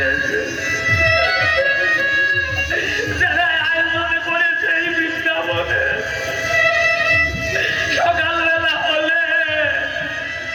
যারা আয়োজন করেছে এই বৃন্দাবনে, সকালবেলা হলে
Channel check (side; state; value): both; identical; correlation 1.00